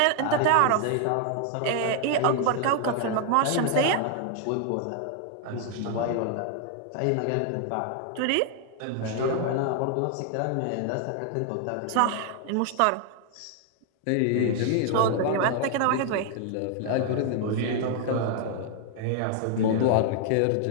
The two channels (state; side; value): different; both; correlation 0.00